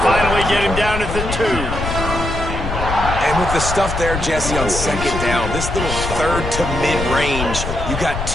finally get him down at the 2. And with the stuff there, Jesse, on second down, this little third to mid-range, you got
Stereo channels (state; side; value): noise; left; rumble, 5 dB below the sound